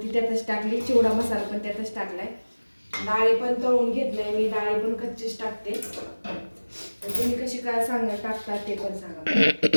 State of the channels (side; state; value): both; inverted; correlation -1.00